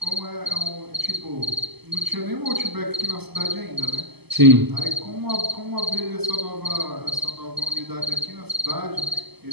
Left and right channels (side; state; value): left; late; 0.99 ms